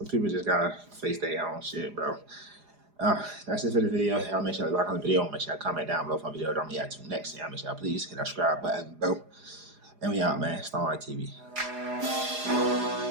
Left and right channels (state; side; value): late; left; 4.9 ms